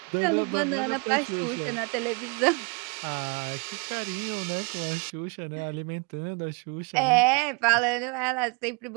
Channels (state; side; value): quieter; left; 32.3 dB